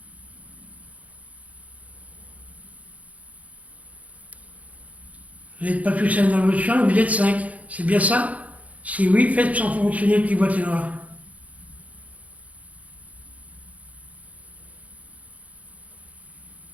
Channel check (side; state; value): left; late; 0.069 ms